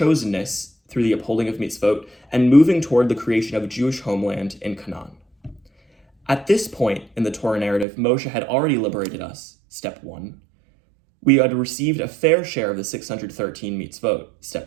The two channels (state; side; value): drops out; left; at 7.9 s